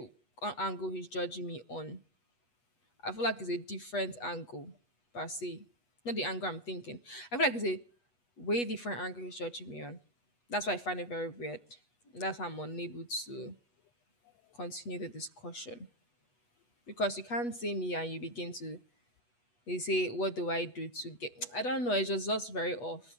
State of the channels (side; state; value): right; late; 8.2 ms